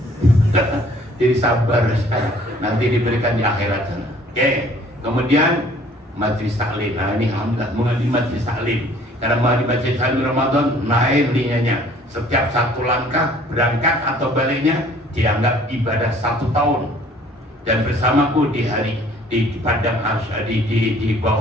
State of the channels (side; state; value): both; normal; correlation 0.55